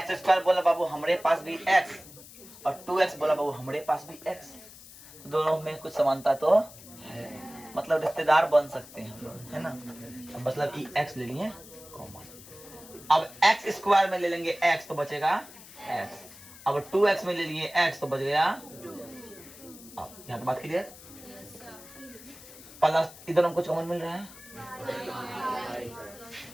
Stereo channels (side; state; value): left; noise; hiss, 18 dB below the sound